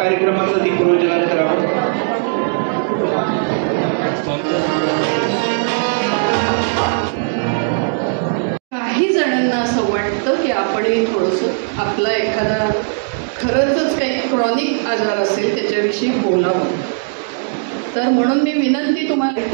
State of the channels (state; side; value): silent; left; digital silence